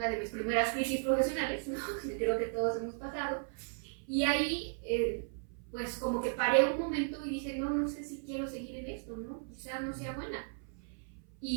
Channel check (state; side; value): silent; left; 54 dB below the other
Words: de mis primeras crisis profesionales, ¿no? Creo que todos hemos pasado, y ahí pues como que paré un momento y dije, no sé si quiero seguir en esto, ¿no? Quizá no sea buena.